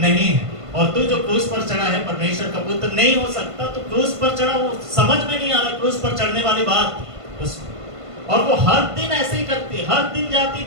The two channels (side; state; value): left; late; 1.5 ms